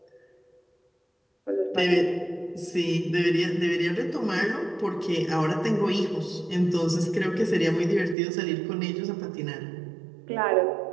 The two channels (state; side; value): drops out; left; at 8.2 s